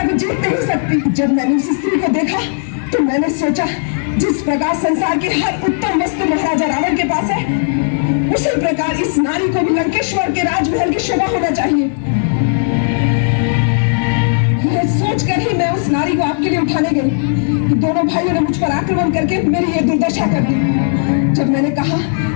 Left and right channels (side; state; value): right; silent; digital silence